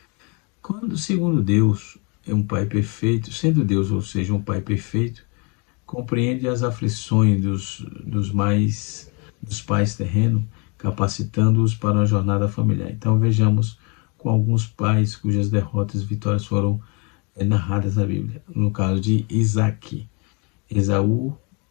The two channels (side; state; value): right; quieter; 32.7 dB